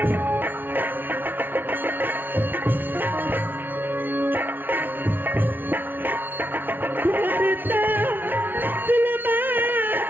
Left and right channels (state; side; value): late; left; 0.093 ms